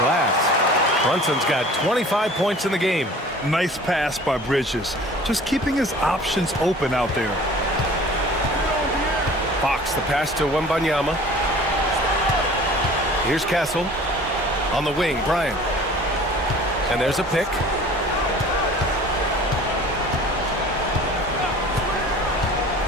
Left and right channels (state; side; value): normal; both; correlation 0.45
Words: Brunson's got 25 points in the game. Nice pass by Bridges. Just keeping his options open out there. Fox, the pass to Wembanyama. Here's Castle. On the wing, Bryant. And there's a pick.